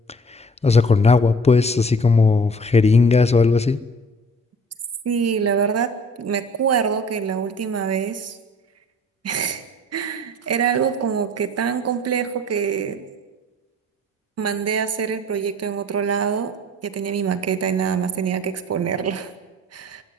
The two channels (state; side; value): normal; both; correlation 0.48